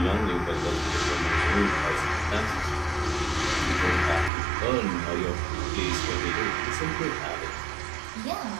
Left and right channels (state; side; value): drops out; left; at 4.3 s